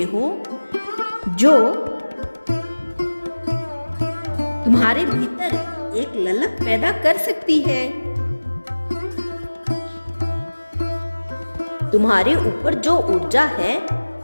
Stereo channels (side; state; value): both; inverted; correlation -1.00